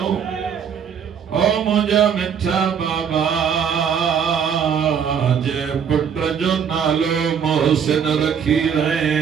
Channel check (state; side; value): quieter; left; 7.5 dB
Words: ओ मुझा मिठा बाबा जे पुट जो नालो मोहसिन रखी रहे